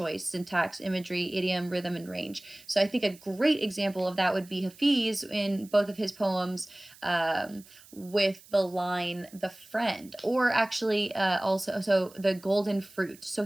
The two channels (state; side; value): noise; right; hiss, 23 dB below the sound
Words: syntax, imagery, idiom, rhythm, and range. So I think a great example of that would be Hafiz in both of his poems, with the line "the friend," or actually also the golden fruit. So